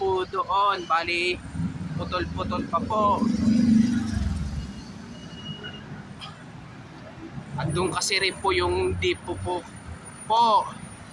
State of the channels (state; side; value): identical; both; correlation 1.00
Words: doon, bali putol-putol pa po. At doon kasi rin po yung depo po.